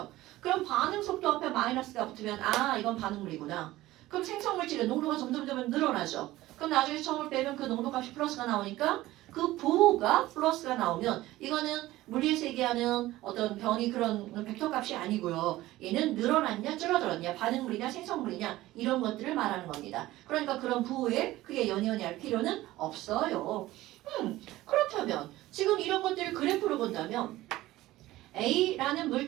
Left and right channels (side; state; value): left; quieter; 16.8 dB